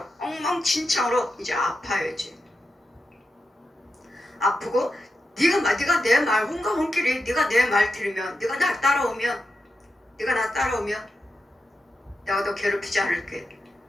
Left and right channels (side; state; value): both; normal; correlation 0.89